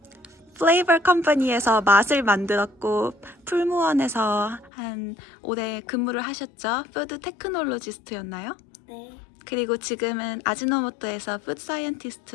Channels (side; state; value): right; drops out; at 4.7 s